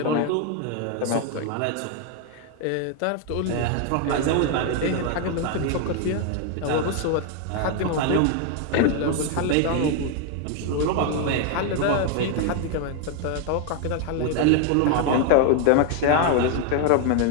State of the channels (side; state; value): both; different; correlation 0.01